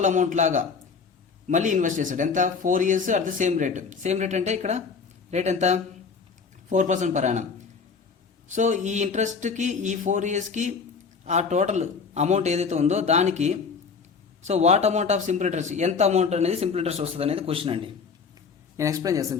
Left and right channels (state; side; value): quieter; right; 5.4 dB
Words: అమౌంట్ లాగా మళ్ళీ ఇన్వెస్ట్ చేశాడు. ఎంత 4 years at the same rate. Same rate అంటే ఇక్కడ రేట్ ఎంత 4% పర్ యానం. సో ఈ ఇంట్రెస్ట్కి ఈ 4 yearsకి ఆ టోటల్ అమౌంట్ ఏదైతే ఉందో దానికి so what amount of simple interest, ఎంత అమౌంట్ అనేది సింపుల్ ఇంట్రెస్ట్ వస్తుంది అనేది క్వశ్చన్ అండి. నేను ఎక్స్ప్లెయిన్